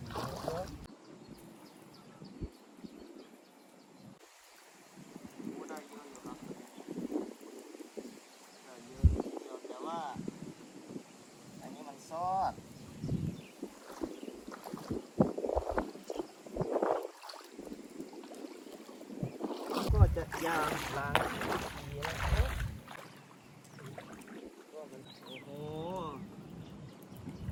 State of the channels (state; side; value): identical; both; correlation 1.00